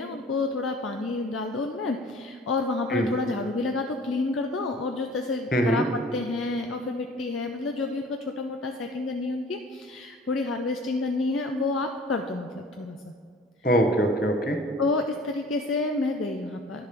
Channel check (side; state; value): both; normal; correlation 0.47